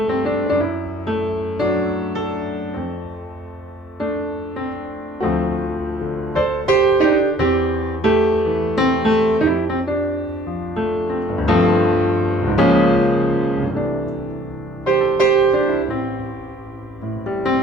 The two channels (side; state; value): both; normal; correlation 0.58